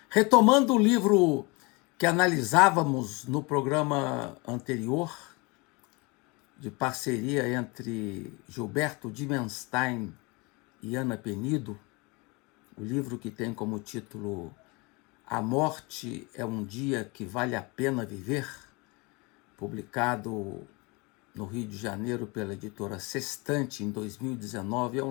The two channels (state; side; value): quieter; right; 27.3 dB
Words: Retomando o livro que analisávamos no programa anterior, de parceria entre Gilberto Dimenstein e Ana Penido, o livro que tem como título A Morte é um Dia que Vale a Pena Viver, publicado no Rio de Janeiro pela editora Sextante em 2019, é